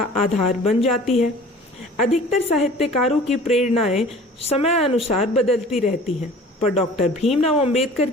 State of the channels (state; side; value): normal; both; correlation 0.45